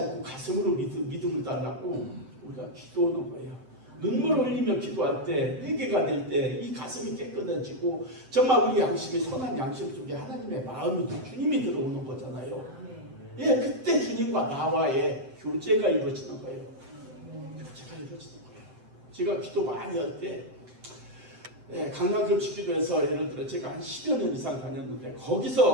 가슴으로 믿음을 달라고 우리가 기도하는 거예요. 눈물을 흘리며 기도할 때, 회개가 될 때 이 가슴이 깨끗해지고 정말 우리 양심이, 선한 양심 속에 하나님의 마음이, 주님이 들어오는 거잖아요. 예, 그때 주님과 나와의 교제가 이루어지는 거예요. 교제가 이루어지는 거예요. 제가 기도 많이 할 때, 강남금식기도에서 예를 들어 제가 한 10여 년 이상 다녔는데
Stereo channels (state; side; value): late; left; 7.8 ms